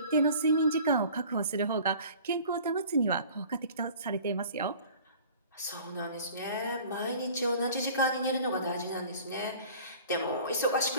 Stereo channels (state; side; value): inverted; both; correlation -0.46